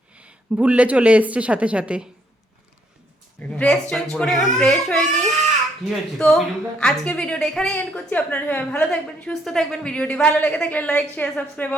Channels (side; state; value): both; normal; correlation 0.70